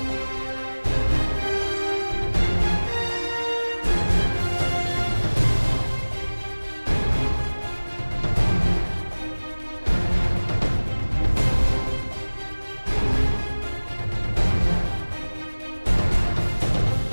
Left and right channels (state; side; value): inverted; both; correlation -1.00